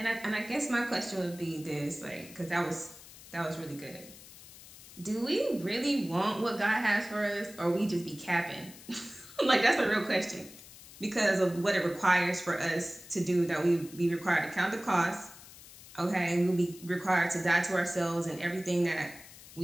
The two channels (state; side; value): noise; left; hiss, 18 dB below the sound